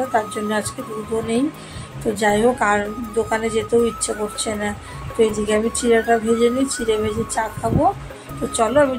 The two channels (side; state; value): both; identical; correlation 1.00